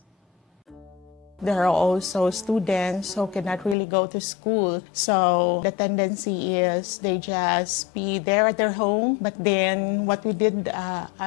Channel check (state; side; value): drops out; right; at 3.8 s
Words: There are also students who cannot really go to school. So the tendency is they just be there at their home. But then what we did